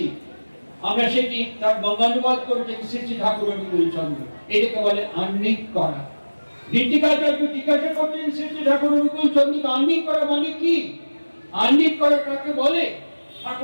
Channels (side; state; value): both; inverted; correlation -1.00